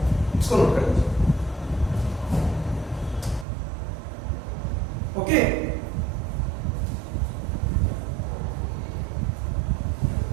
इसको नोट कर लीजिए। ओके,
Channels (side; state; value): left; drops out; at 3.5 s